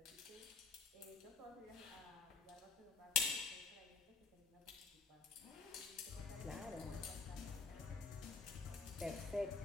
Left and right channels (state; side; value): quieter; right; 4.7 dB